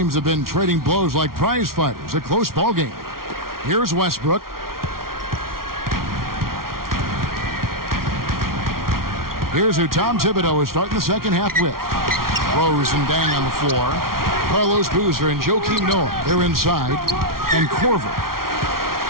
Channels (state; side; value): late; left; 0.93 ms